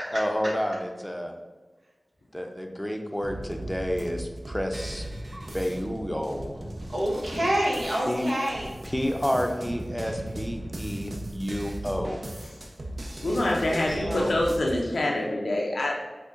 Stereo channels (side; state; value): both; normal; correlation 0.97